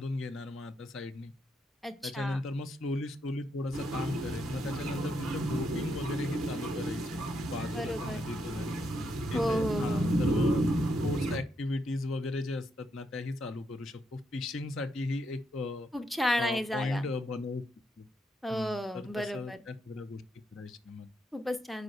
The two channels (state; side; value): normal; both; correlation 0.79